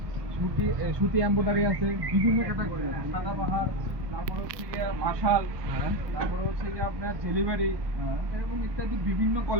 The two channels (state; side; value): late; left; 1.3 ms